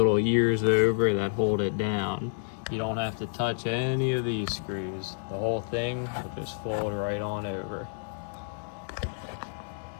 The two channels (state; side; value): silent; right; digital silence